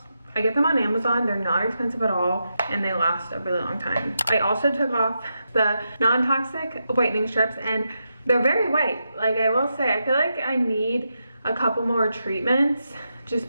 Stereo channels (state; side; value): inverted; both; correlation -0.86